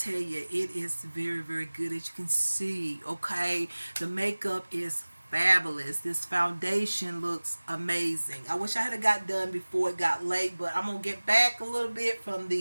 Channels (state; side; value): inverted; both; correlation -1.00